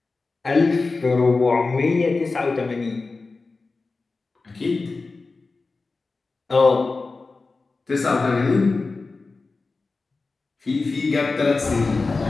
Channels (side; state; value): right; quieter; 3.9 dB